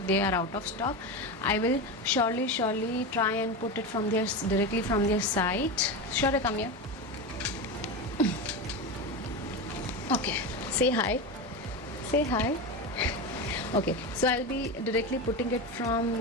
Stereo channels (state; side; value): normal; both; correlation 0.19